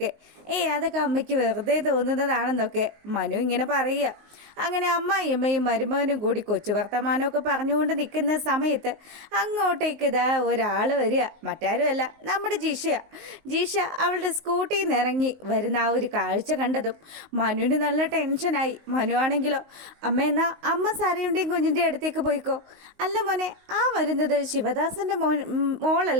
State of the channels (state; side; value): late; left; 19 ms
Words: അതൊക്കെ അമ്മയ്ക്ക് വെറുതെ തോന്നുന്നതാണെന്നൊക്കെ മനു ഇങ്ങനെ പറയുക. അങ്ങനെ അമ്മായിയമ്മയും മരുമകനും കൂടി കൊച്ചു വർത്തമാനമൊക്കെ പറഞ്ഞുകൊണ്ട് നിൽക്കുന്ന സമയത്ത് അങ്ങോട്ടേക്ക് ഇതാ ഒരാൾ വരിക. മറ്റാരുമല്ല, നമ്മുടെ ജിഷ അവളുടെ സ്കൂട്ടിയിൽ നിന്ന് ഇറങ്ങി വരുന്ന ആ ഒരു കാഴ്ച കണ്ടതും മനുവിന് നല്ല ടെൻഷനായി. മനു ആണെങ്കിലോ, എന്നാ അമ്മ സാരയുടെയും കുഞ്ഞിൻ്റെ അടുത്തേക്ക് പോയിക്കോ. അല്ല മോനെ, ആ വരുന്നത് ശിവദാസൻ്റെ